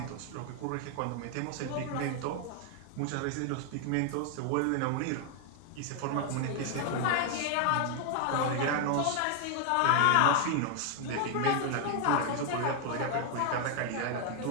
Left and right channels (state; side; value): different; both; correlation 0.00